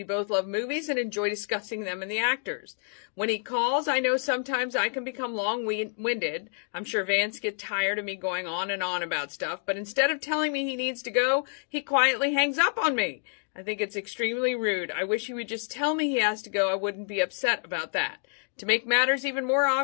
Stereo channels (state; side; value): silent; right; 57 dB below the other